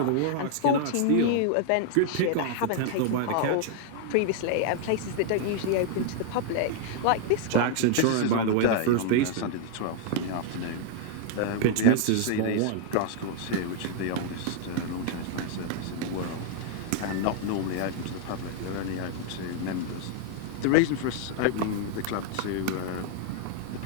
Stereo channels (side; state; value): both; different; correlation 0.00